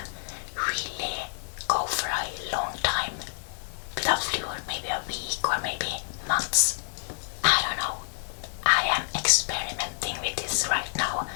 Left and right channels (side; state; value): right; silent; digital silence